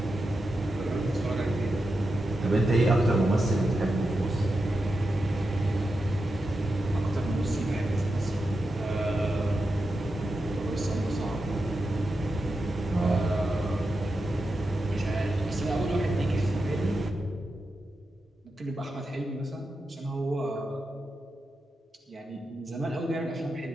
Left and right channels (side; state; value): both; normal; correlation 0.89